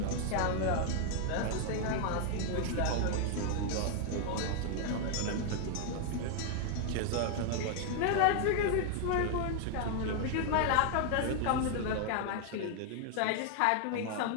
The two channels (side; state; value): both; different; correlation 0.00